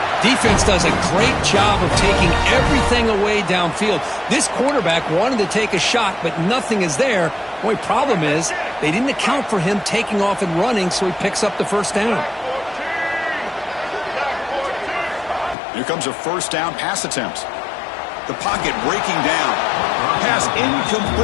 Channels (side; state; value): right; drops out; at 15.6 s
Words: Defense does a great job of taking everything away downfield. This quarterback wanted to take a shot, but nothing is there. The only problem is they didn't account for him taking off and running, so he picks up the 1st down. Here comes a 1st down pass attempt. The pocket breaking down. Pass